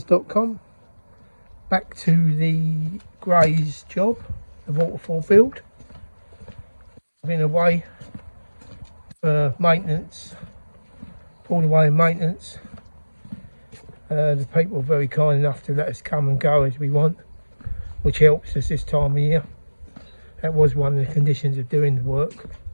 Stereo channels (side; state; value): both; inverted; correlation -1.00